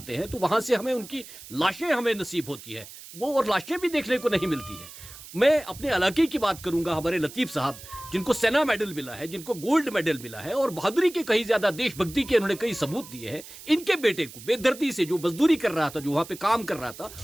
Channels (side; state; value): right; noise; hiss, 16 dB below the sound